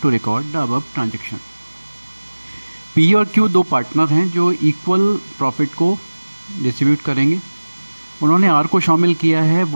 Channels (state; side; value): inverted; both; correlation -1.00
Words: to record the above transaction. P और Q दो partner हैं जो equal profit को distribute करेंगे। उन्होंने are को शामिल किया है